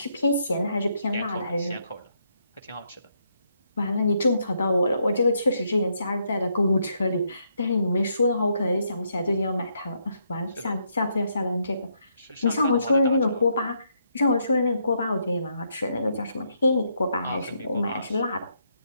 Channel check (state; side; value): inverted; both; correlation -0.76